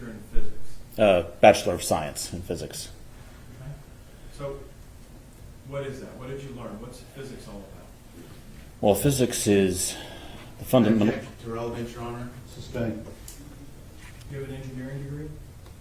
in physics? Bachelor of Science in physics. Okay. So, what is that? What did you learn? What's physics all about? Well, physics is the fundamental. To relevance, Your Honor. Sustained. Do you have an engineering degree?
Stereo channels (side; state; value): both; identical; correlation 1.00